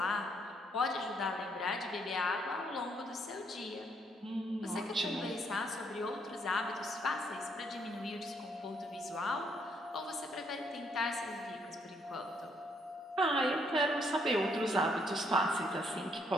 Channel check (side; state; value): both; normal; correlation 0.70